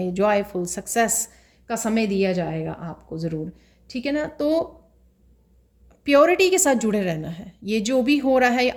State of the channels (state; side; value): identical; both; correlation 1.00